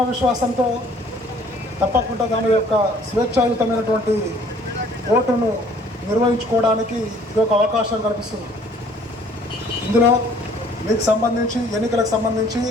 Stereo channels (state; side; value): normal; both; correlation 0.57